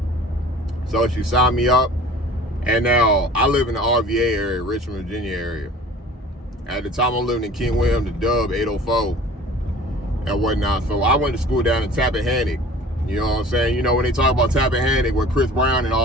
So she signed me up. And now, I live in the RVA area, Richmond, Virginia area. At the time, I'm living in King William, the Dub, 804, and whatnot. So I went to school down in Tappahannock. You know what I'm saying? When they talk about Tappahannock, where Chris Brown and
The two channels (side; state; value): both; normal; correlation 0.45